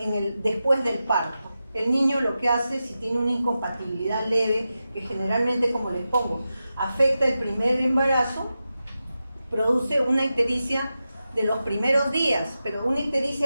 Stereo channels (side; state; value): both; inverted; correlation -0.91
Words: después del parto. El niño lo que hace, si tiene una incompatibilidad leve, que generalmente, como les pongo, afecta el primer embarazo, produce una ictericia de los primeros días, pero una